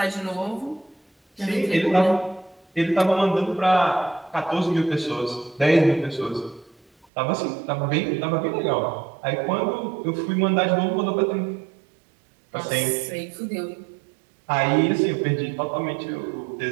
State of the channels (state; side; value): drops out; left; at 7.1 s